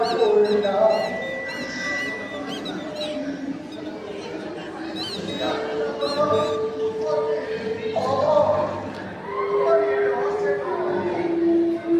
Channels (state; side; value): identical; both; correlation 1.00